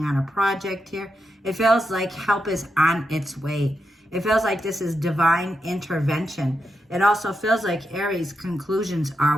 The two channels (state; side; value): normal; both; correlation 0.85